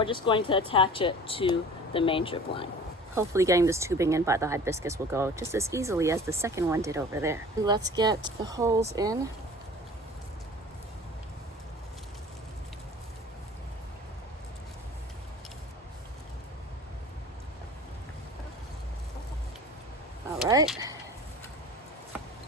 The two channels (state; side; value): normal; both; correlation 0.42